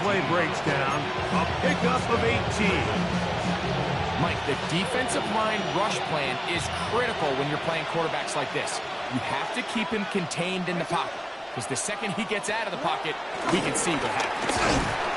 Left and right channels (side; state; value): both; identical; correlation 1.00